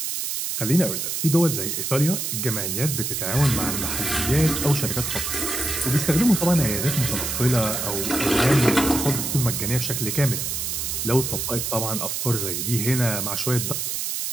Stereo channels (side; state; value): right; noise; hiss, 2 dB below the sound